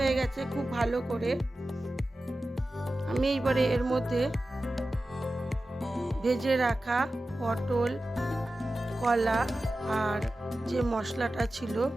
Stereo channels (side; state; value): both; normal; correlation 0.94